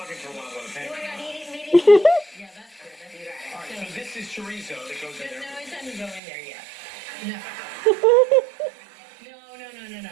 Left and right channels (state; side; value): drops out; left; at 6.2 s